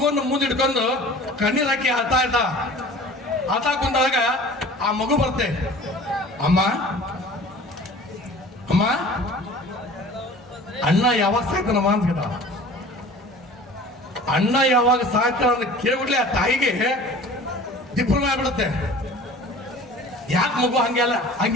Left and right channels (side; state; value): both; normal; correlation 0.43